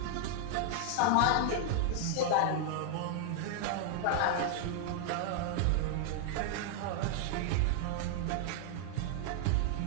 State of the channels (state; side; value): different; both; correlation -0.01